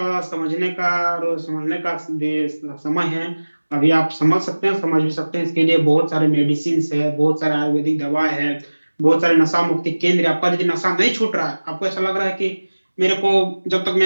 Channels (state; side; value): inverted; both; correlation -1.00